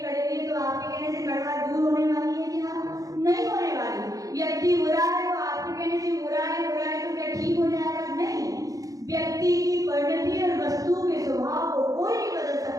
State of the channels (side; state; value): left; late; 0.17 ms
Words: है, तो आपके कहने से कड़वा दूर होने वाली है? क्या नहीं होने वाली। व्यक्ति बुरा है तो आपके कहने से बुरा है तो क्या ठीक हो जाएगा? नहीं। व्यक्ति की परिणति और वस्तु के स्वभाव को कोई नहीं बदल